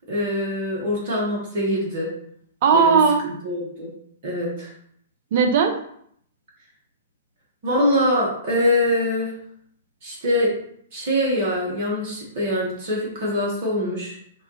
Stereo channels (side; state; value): both; inverted; correlation -0.35